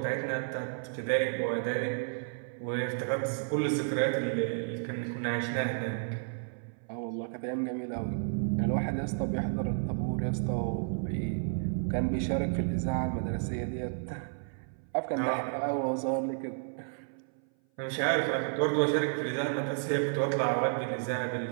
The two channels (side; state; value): left; silent; 57 dB below the other